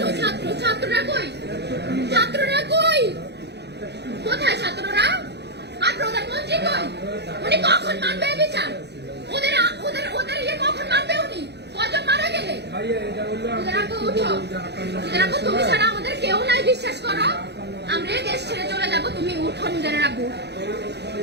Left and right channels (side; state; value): left; late; 0.49 ms